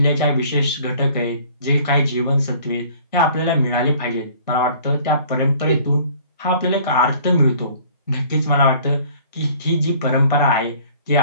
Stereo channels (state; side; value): inverted; both; correlation -0.53